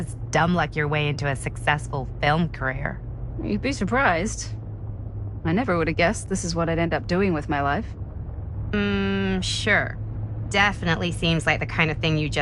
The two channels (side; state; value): both; identical; correlation 1.00